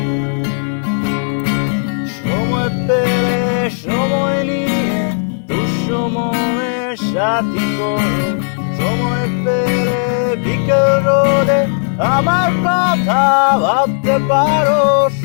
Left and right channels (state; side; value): silent; right; digital silence